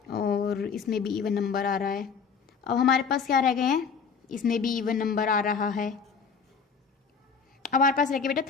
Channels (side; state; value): right; quieter; 5.9 dB